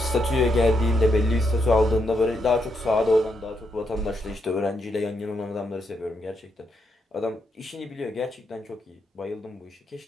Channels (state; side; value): normal; both; correlation 0.79